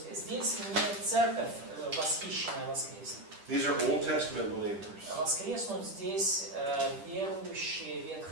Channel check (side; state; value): left; late; 10 ms